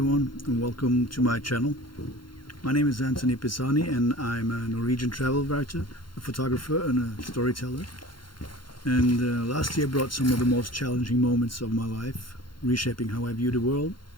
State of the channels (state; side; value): late; right; 0.72 ms